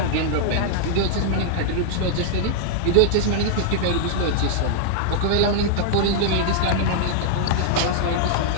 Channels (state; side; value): different; both; correlation -0.01